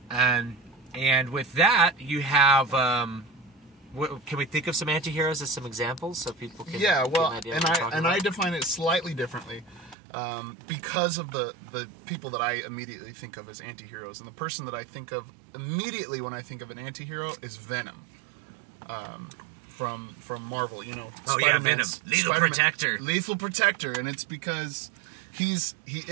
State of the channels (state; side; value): drops out; left; at 10.0 s